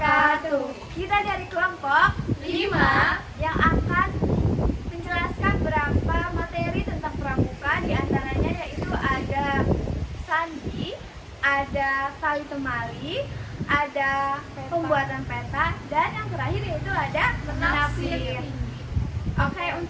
Kita dari kelompok 5 yang akan menjelaskan beberapa materi tentang pramuka. Di antaranya yaitu ada sandi, ada tali temali, ada pembuatan peta, dan yang terakhir yaitu ada menafsir. Oke,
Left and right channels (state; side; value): identical; both; correlation 1.00